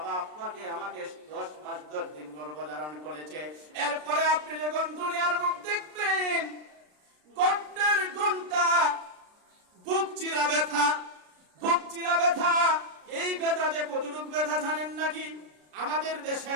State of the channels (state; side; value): late; left; 33 ms